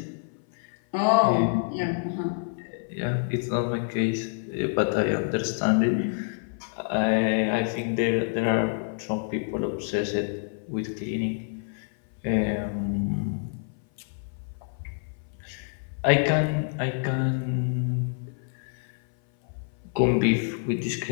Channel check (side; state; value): right; silent; 56 dB below the other